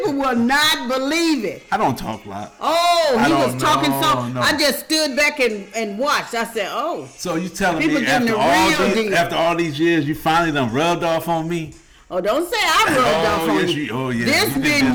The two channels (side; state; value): both; identical; correlation 1.00